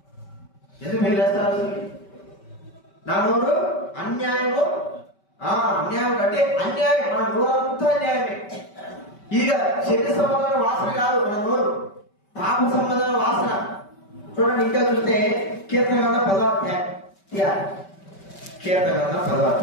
ఎందుకు మీరు వేస్తారు? నా నోరు అన్యాయము. అన్యాయం అంటే అన్యాయం. మన నోరు అంతా అన్యాయమే. ఇదిగా శరీర సంబంధమైన వాసన కాదు మన నోరు, పాప సంబంధమైన వాసన. చూడండి ఇంకా చూస్తే కీర్తన గ్రంథం 10వ అధ్యాయం 7వ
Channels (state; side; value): late; right; 5.2 ms